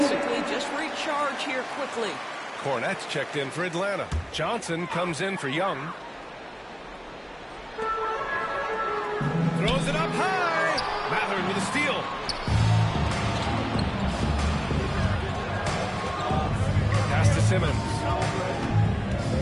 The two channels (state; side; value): identical; both; correlation 1.00